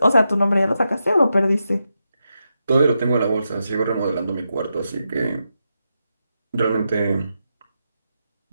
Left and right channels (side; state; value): both; inverted; correlation -0.86